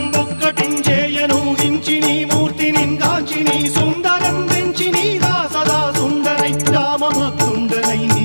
ఒక్కటించేయనూహించి నీ మూర్తిని గాంచి నీ సుందరం వెంచి నీ సదా సుందరై రామభక్తుండనై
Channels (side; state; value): both; inverted; correlation -1.00